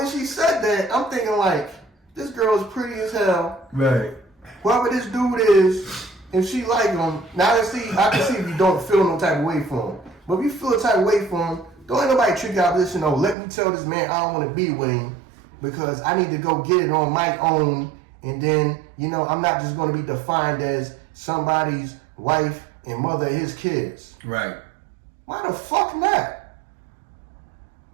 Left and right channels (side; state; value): left; drops out; at 13.4 s